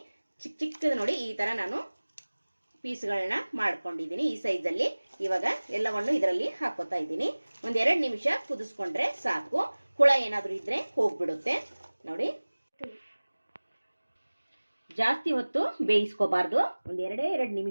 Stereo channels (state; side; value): inverted; both; correlation -1.00